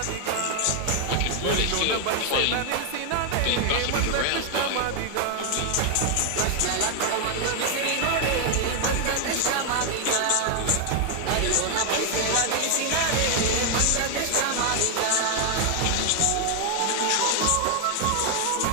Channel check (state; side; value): different; both; correlation 0.00